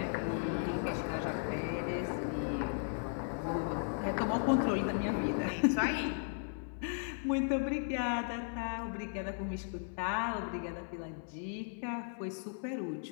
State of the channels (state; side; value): silent; right; 54 dB below the other